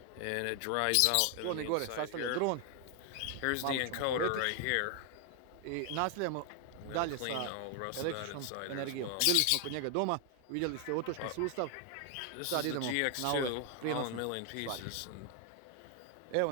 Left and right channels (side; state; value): both; different; correlation 0.00